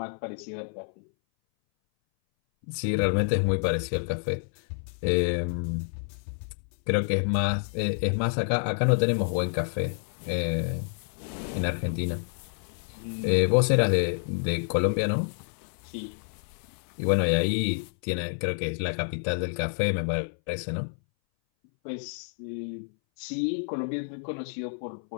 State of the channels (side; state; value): right; silent; 59 dB below the other